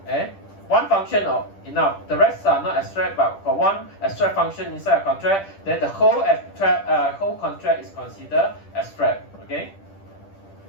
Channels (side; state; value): right; late; 10 ms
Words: one function enough. The rest are not abstract, but for one abstract function inside a contract, then the whole contract is considered abstract. Okay.